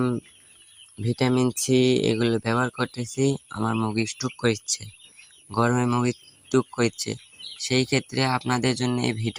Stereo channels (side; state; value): both; identical; correlation 1.00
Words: ভিটামিন সি এগুলো ব্যবহার করতেছি, আমার মুরগি স্ট্রোক করছে, গরমে মুরগি স্ট্রোক করছে। সেই ক্ষেত্রে আপনাদের জন্য এই